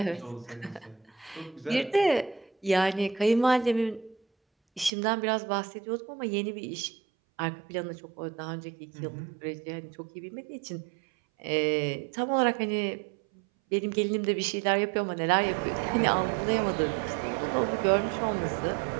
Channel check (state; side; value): drops out; left; at 4.9 s